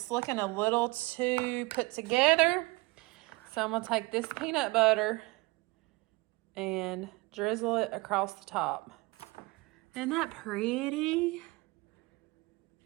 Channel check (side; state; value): left; quieter; 24.3 dB